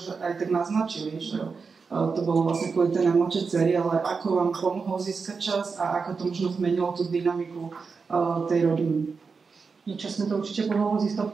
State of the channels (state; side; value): quieter; left; 5.0 dB